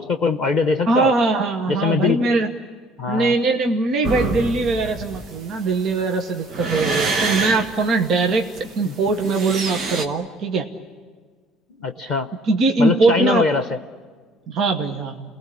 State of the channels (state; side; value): normal; both; correlation 0.56